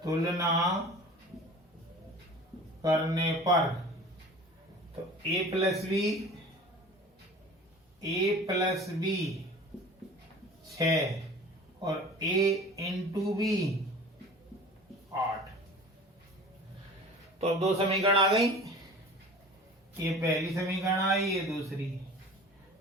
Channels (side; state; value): both; normal; correlation 0.41